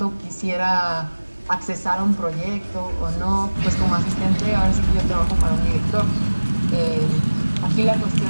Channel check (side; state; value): both; inverted; correlation -1.00